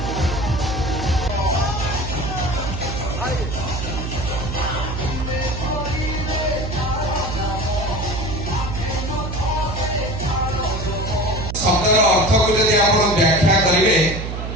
शब्दर अर्थ को यदि आप व्याख्या करेंगे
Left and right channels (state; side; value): noise; right; hum, 5 dB below the sound